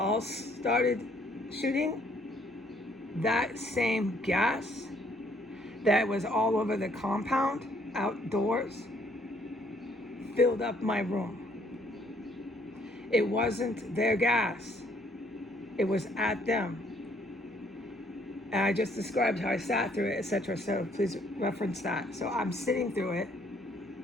started shooting, that same gas that was all over the compound outdoors filled up my room. It wasn't their gas. It was at them. And I just described how I sat through it, etc. So please reference that. So I'm sitting through it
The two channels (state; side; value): normal; both; correlation 0.65